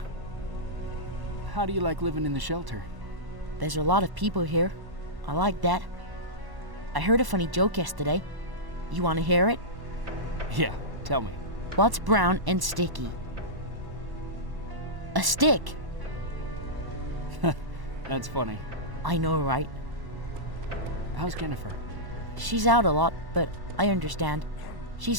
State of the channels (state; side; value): late; left; 1.1 ms